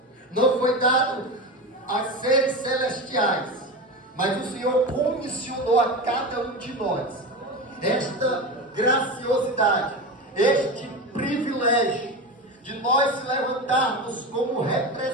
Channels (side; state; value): both; normal; correlation 0.23